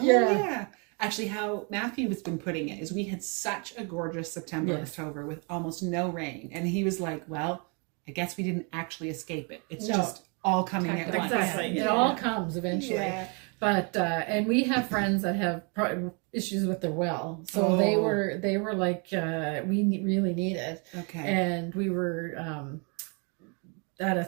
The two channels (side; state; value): left; quieter; 34.9 dB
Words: Yeah. yeah. Actually, how Matthew has been putting it is we had such a gorgeous September, Yes. October with almost no rain. And he was like, well, I guess we didn't actually escape it. It's No. just all coming at once. Exactly. Yeah. It all comes eventually. Yeah. But and we have friends that have issues with their well, so they Oh. were like really need it, Okay. and we were at a